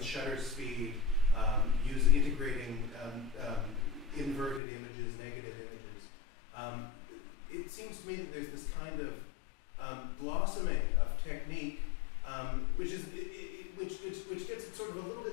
shutter speed, integrating inverted images, negative images. It seems to me that there's this kind of blossoming of technique, which gets it sort of a little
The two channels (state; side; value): drops out; right; at 4.6 s